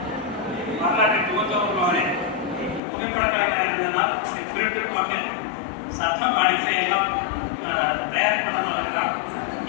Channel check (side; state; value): right; drops out; at 2.8 s